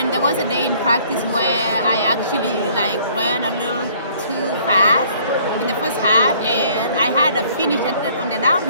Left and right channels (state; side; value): inverted; both; correlation -0.58